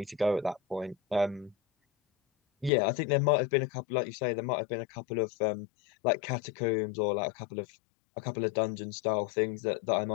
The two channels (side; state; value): right; drops out; at 2.7 s